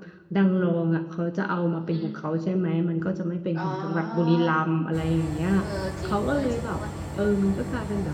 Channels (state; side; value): identical; both; correlation 1.00